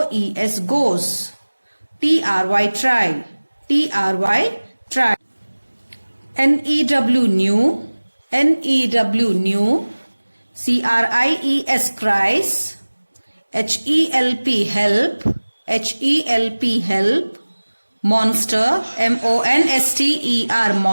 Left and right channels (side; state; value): both; inverted; correlation -1.00